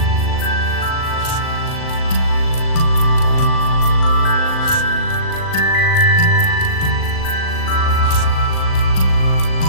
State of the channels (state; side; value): late; right; 38 ms